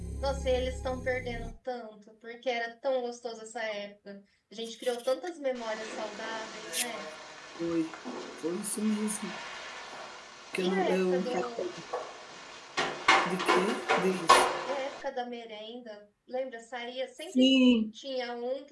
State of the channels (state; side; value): identical; both; correlation 1.00